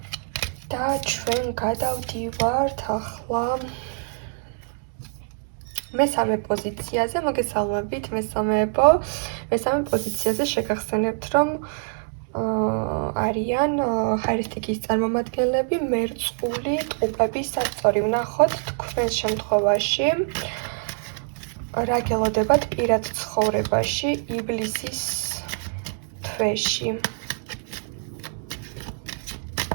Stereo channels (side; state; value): left; silent; digital silence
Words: და ჩვენ გადავდივართ ახლა მესამე პოზიციაზე. მოგესალმებით მესამეებო. მესამე პოზიციაზე შეგახსენებთ, რომ არიან ხაერისტიკის წარმომადგენლები, მერწყული, ტყუპები, სასწორი. ვნახოთ თქვენს შემთხვევაში რა გელოდებათ პირად ცხოვრებაში ივლისის თვეში.